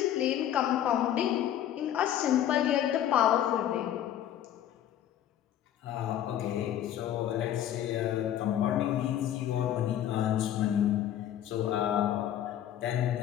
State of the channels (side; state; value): right; quieter; 11.1 dB